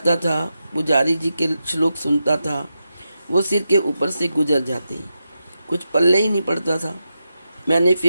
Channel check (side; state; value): both; inverted; correlation -0.88